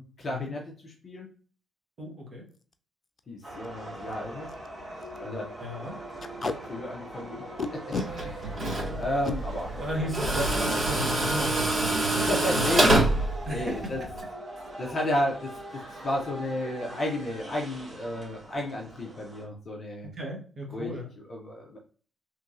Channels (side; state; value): both; normal; correlation 0.74